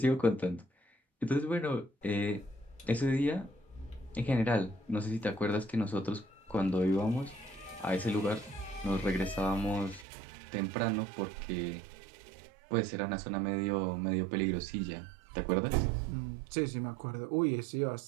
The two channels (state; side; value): drops out; left; at 10.1 s